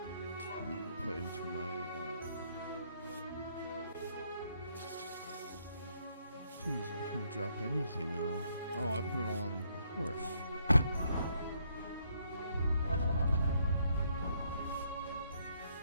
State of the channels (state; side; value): inverted; both; correlation -0.72